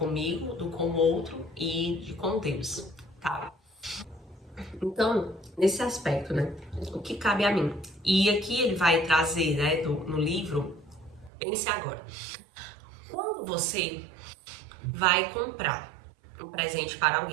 do com o outro e de com Deus, tá? Então, nesse aspecto, né, o que cabe a mim? E aqui ele vai trazer, né, no livro, pense agora. Quando você vai comprar um presente para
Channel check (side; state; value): left; drops out; at 11.3 s